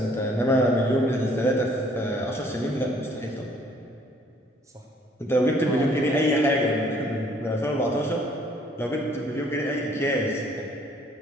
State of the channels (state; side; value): normal; both; correlation 0.61